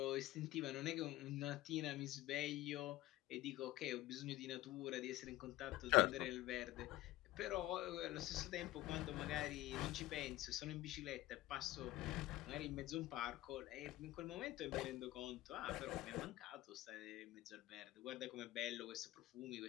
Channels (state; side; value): quieter; right; 16.6 dB